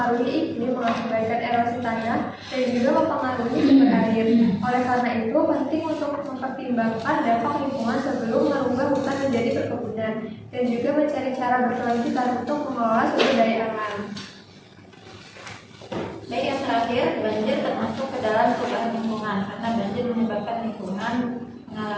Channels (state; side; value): identical; both; correlation 1.00